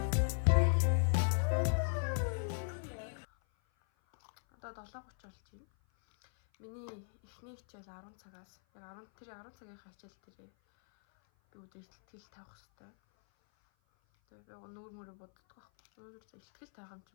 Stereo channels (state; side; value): silent; right; 53 dB below the other